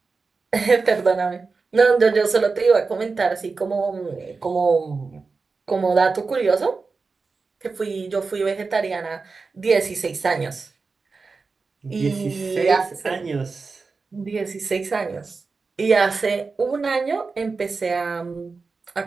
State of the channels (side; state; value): left; quieter; 4.4 dB